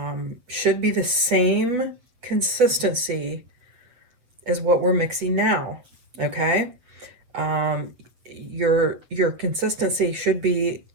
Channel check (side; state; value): left; late; 8.1 ms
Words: should be the same consistency as what we're mixing now, okay? Your consistency should be